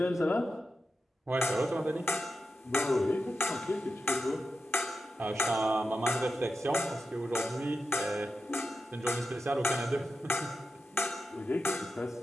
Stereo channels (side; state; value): both; normal; correlation 0.90